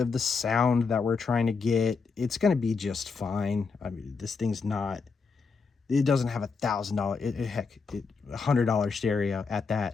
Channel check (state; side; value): quieter; right; 4.9 dB